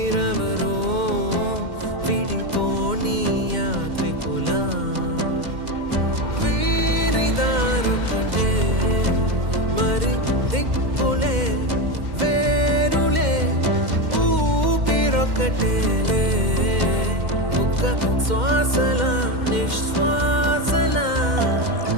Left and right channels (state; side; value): late; left; 2.1 ms